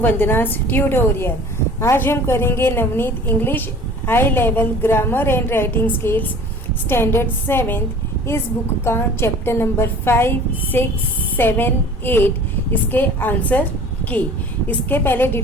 Vandana's tutorial. आज हम करेंगे Navneet English high level grammar and writing skills standard 7th इस book का chapter number 5, 6, 7, 8 इसके आंसर की। इसके पहले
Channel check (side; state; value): both; normal; correlation 0.45